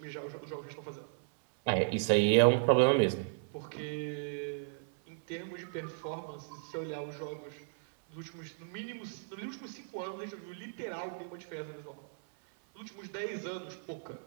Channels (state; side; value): silent; left; 54 dB below the other